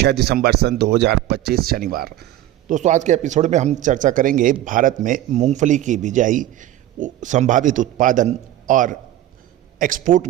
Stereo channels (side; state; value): left; quieter; 13.6 dB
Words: दिसंबर सन 2025 शनिवार। दोस्तों आज के एपिसोड में हम चर्चा करेंगे भारत में मूंगफली की बिजाई, संभावित उत्पादन और एक्सपोर्ट